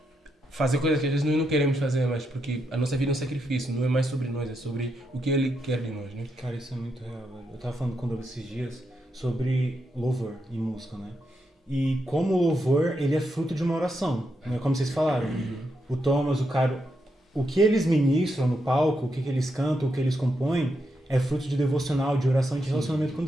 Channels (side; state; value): both; normal; correlation 0.82